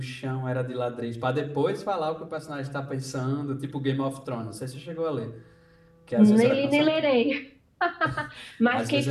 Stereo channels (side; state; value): both; identical; correlation 1.00